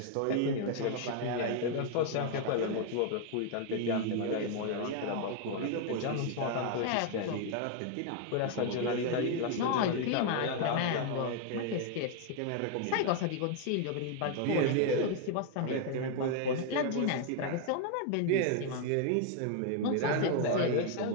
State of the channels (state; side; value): different; both; correlation 0.00